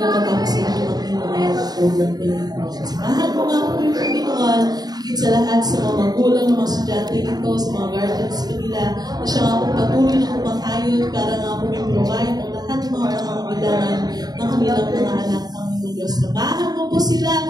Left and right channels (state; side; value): late; left; 0.19 ms